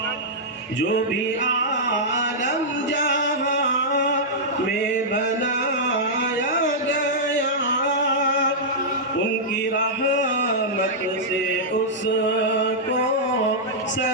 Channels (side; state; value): both; normal; correlation -0.10